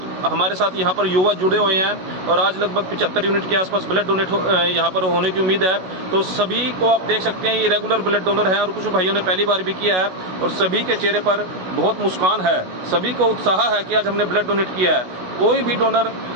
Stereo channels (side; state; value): left; late; 16 ms